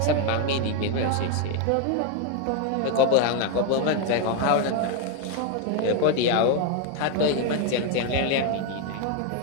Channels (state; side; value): different; both; correlation 0.01